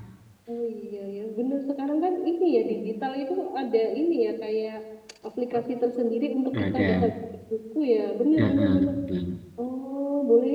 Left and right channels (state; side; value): identical; both; correlation 1.00